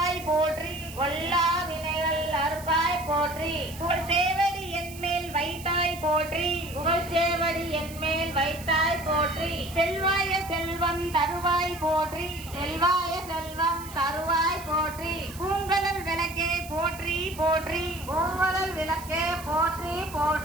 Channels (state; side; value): noise; right; hiss, 16 dB below the sound